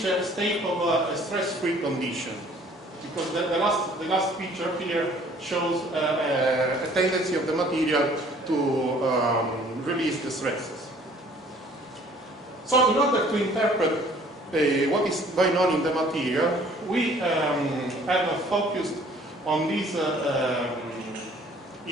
a state of a stress-free condition. because the last picture here shows a tendency of the material to release the stresses. So in order to interpret what is going on in the material, we have focused on this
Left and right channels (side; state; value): both; normal; correlation 0.55